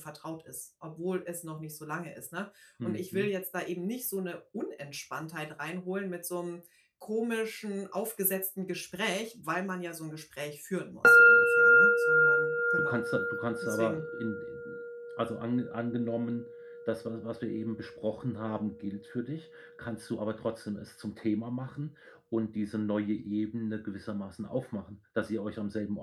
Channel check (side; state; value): both; identical; correlation 1.00